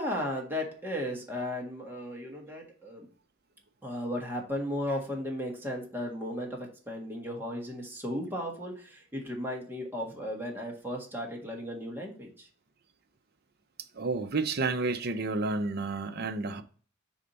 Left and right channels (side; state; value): both; normal; correlation 0.39